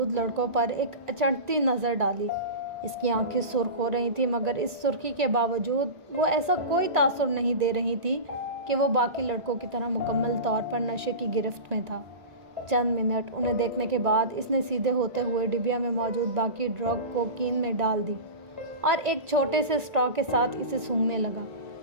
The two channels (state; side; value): late; left; 1.9 ms